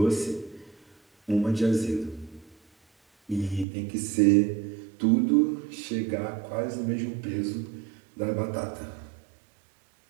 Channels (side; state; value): left; drops out; at 3.7 s